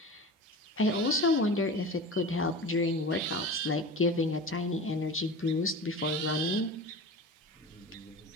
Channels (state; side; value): normal; both; correlation 0.33